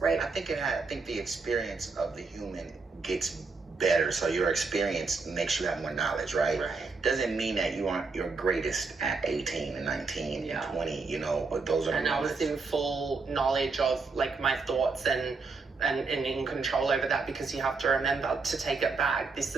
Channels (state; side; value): quieter; left; 4.3 dB